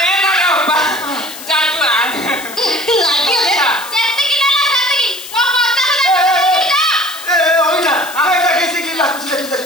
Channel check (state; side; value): noise; left; hiss, 13 dB below the sound